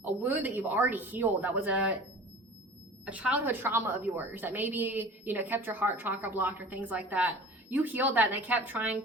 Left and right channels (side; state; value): both; normal; correlation 0.41